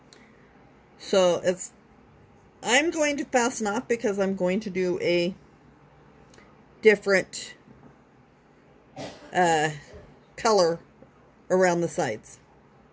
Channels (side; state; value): both; identical; correlation 1.00